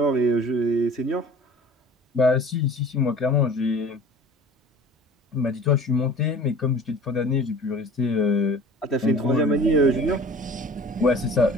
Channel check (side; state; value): both; normal; correlation 0.44